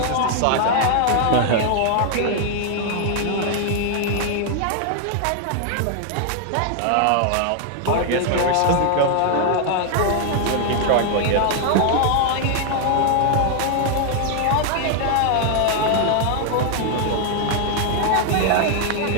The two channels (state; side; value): different; both; correlation 0.00